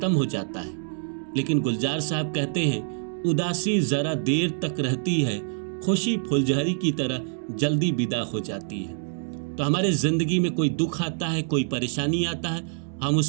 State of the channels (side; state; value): left; silent; digital silence